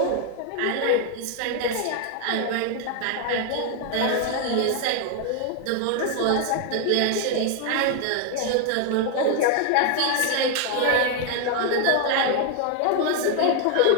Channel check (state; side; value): different; both; correlation 0.00